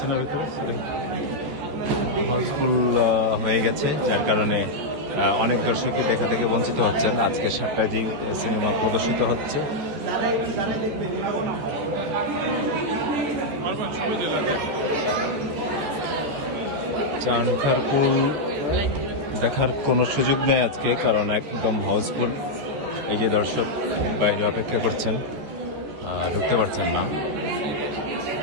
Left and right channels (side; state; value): left; late; 14 ms